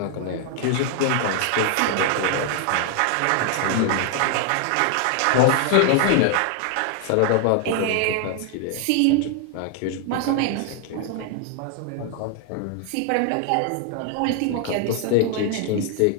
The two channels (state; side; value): different; both; correlation 0.00